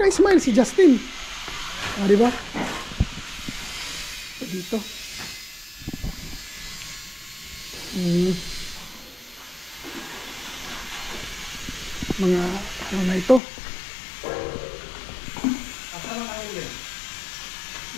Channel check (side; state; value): right; drops out; at 13.4 s